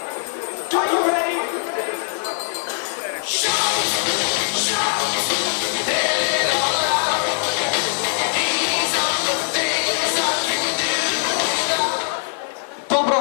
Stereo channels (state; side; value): silent; right; 65 dB below the other